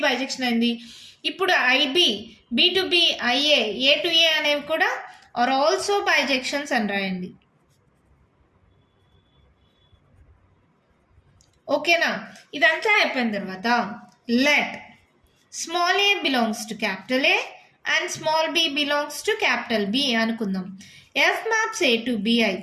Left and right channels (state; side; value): identical; both; correlation 1.00